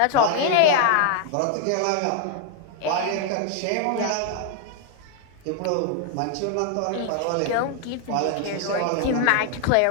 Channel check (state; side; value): different; both; correlation 0.00